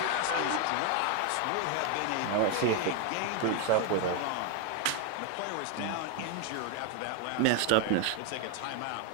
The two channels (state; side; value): different; both; correlation 0.01